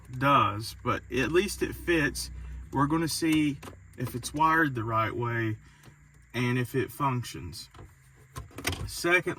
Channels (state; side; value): identical; both; correlation 1.00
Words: does, but at least it fits. We're going to see if it's wired the right way and if it functions.